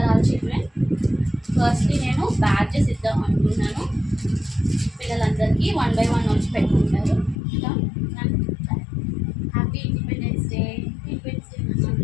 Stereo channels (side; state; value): right; drops out; at 7.4 s